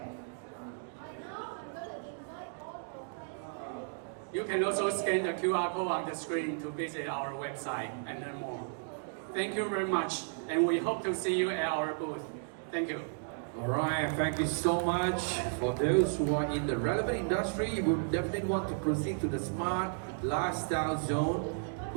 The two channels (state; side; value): silent; left; digital silence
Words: You can also scan the QR code on the screen to visit our website and learn more. Thank you very much, and we hope to see you at our booth. Thank you. Alright, thank you so much. For those who are in the relevant industry, you would definitely want to proceed to the Smart Lifestyle Zone,